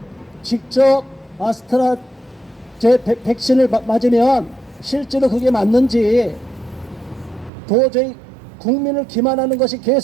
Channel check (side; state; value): left; drops out; at 7.5 s